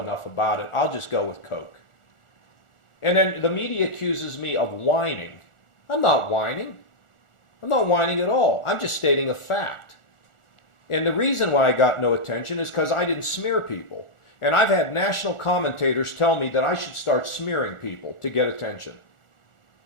enough about it. I'll just go with Coke. And then the media accuses me of whining. I'm not whining. I'm not whining at all. I'm just stating a fact. And the reason why I got no attention is because I didn't smear people. And I've had national commentators tell me that I should start smearing people to get attention.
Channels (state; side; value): late; right; 1.4 ms